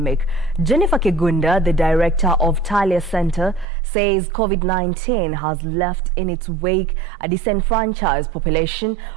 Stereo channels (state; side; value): drops out; left; at 3.7 s